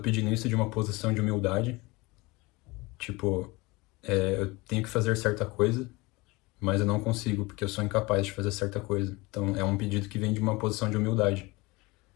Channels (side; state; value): right; quieter; 23.5 dB